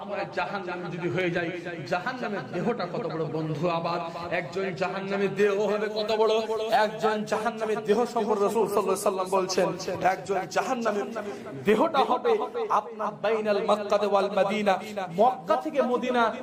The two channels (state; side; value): identical; both; correlation 1.00